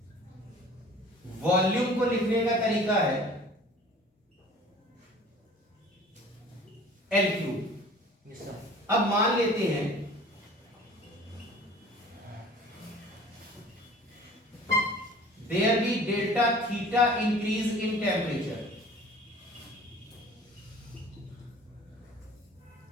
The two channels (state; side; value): normal; both; correlation 0.46